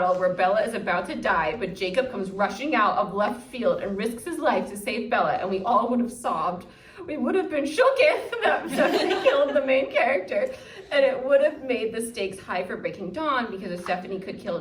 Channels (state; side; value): identical; both; correlation 1.00